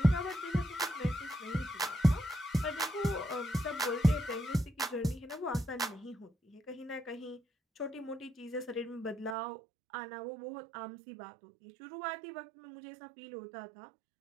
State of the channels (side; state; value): left; drops out; at 9.3 s